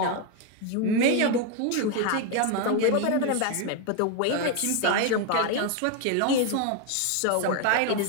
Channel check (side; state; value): both; different; correlation 0.01